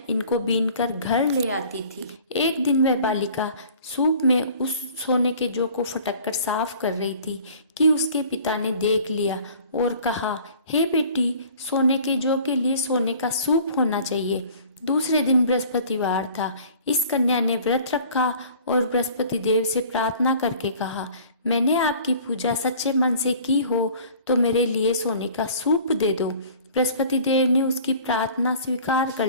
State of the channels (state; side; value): inverted; both; correlation -0.48